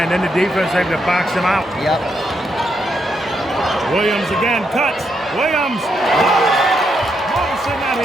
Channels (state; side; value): normal; both; correlation 0.79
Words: and then the defense able to box him out. Yep. Williams again, cuts. Williams. Morrison out